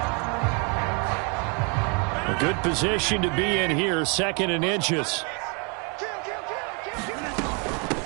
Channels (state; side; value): quieter; left; 34.2 dB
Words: Good position to be in here, 2nd and inches.